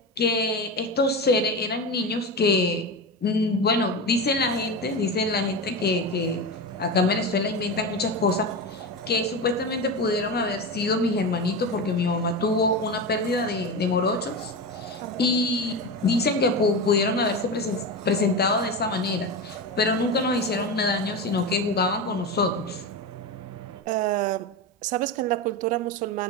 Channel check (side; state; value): both; normal; correlation 0.21